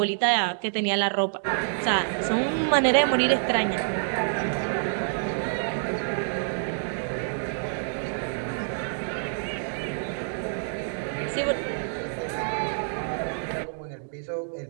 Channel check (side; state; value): left; silent; digital silence